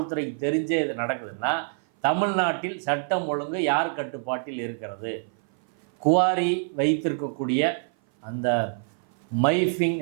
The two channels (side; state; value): left; silent; 57 dB below the other